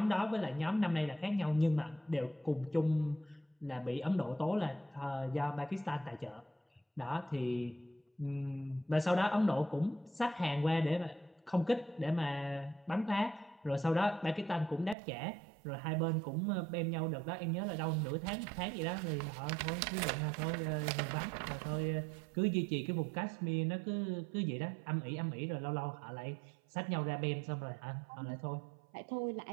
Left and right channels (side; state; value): left; drops out; at 15.0 s